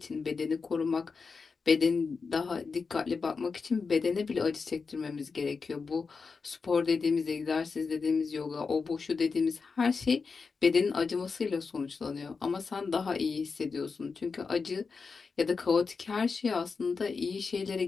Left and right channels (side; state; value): right; quieter; 4.9 dB